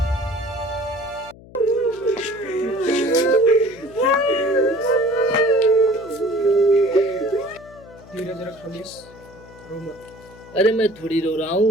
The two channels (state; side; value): noise; left; hum, 21 dB below the sound